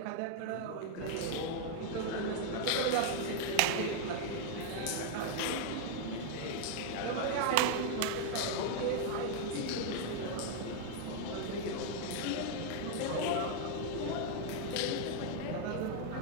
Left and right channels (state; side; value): different; both; correlation 0.00